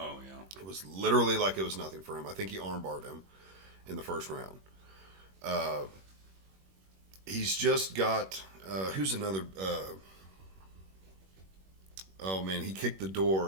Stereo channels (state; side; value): late; left; 21 ms